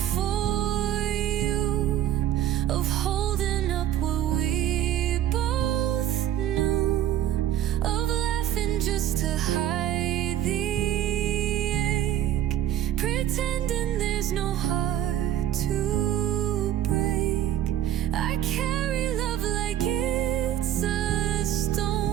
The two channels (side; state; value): left; quieter; 11.7 dB